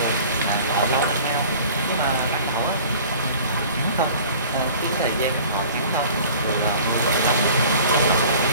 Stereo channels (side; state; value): both; inverted; correlation -0.46